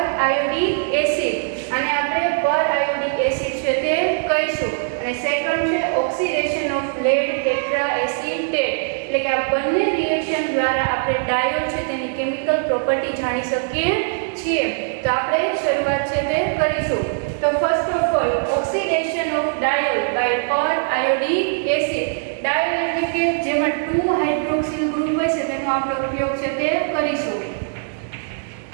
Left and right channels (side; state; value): left; silent; digital silence